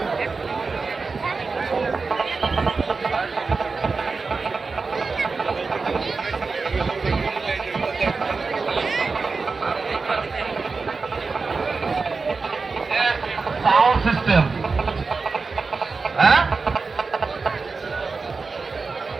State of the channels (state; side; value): quieter; left; 4.4 dB